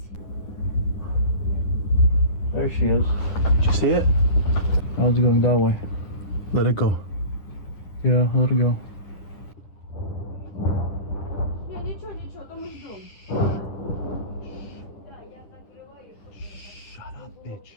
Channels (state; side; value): late; right; 10 ms